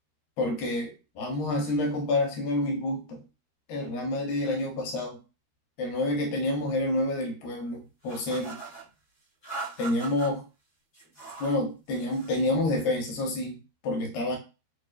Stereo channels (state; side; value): late; right; 13 ms